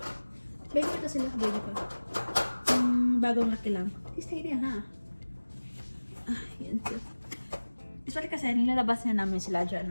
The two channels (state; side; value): inverted; both; correlation -1.00